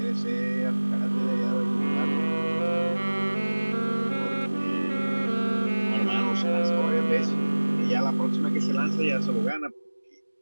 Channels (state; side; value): inverted; both; correlation -1.00